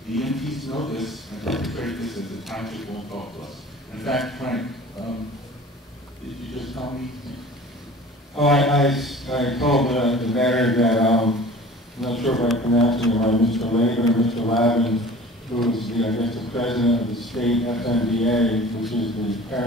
The EMTs know this and perpetrate this as the township won't talk to us. In fact, Frank, did you just tell me? Oh, I told the mayor that, I'm not sure if I'm pronouncing it right, Mr. Laban or Mr. Lavin, who is the, I guess, the president of the state FMDA, which is the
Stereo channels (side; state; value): both; normal; correlation 0.43